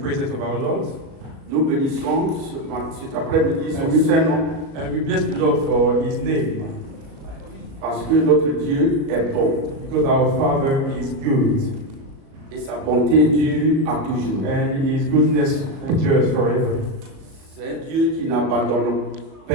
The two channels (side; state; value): left; late; 37 ms